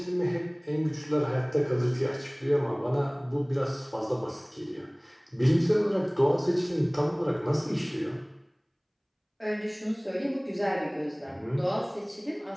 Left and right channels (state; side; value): identical; both; correlation 1.00